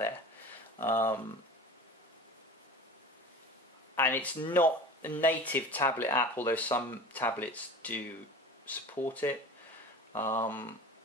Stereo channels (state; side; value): normal; both; correlation 0.36